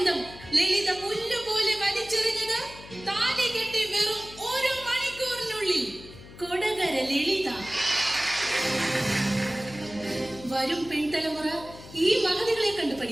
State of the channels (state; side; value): noise; left; hum, 17 dB below the sound